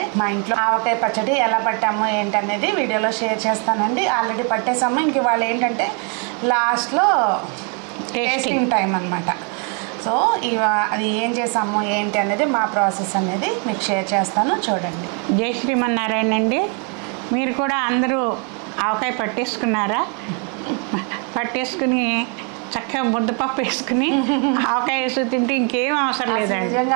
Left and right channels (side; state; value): left; quieter; 37.4 dB